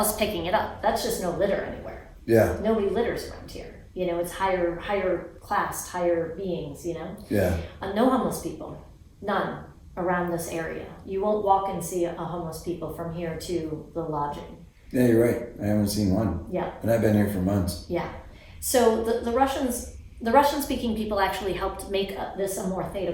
picking it up. That's just no litter anywhere. Yeah. Nobody litters around here. You know, it's higher class, higher beings, you know? Yeah. No homeless people. None around this area. You won't walk and see a homeless people from here to the lodging. Yeah, you're right. I haven't seen one. Yeah. And I've been here for months. Yeah. So the Russian-speaking people actually helped make this a more theta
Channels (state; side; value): identical; both; correlation 1.00